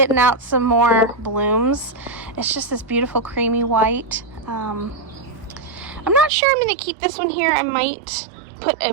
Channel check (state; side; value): drops out; left; at 6.3 s